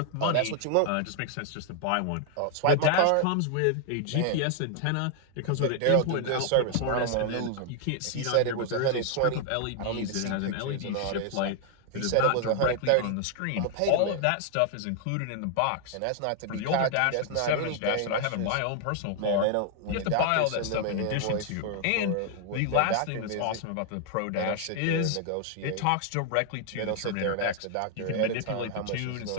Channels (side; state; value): both; different; correlation 0.00